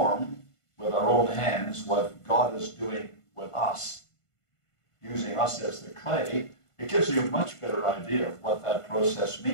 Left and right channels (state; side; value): late; right; 1.5 ms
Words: with our own hands what God is doing with us, using us as the clay, it gives you a much better idea of what that process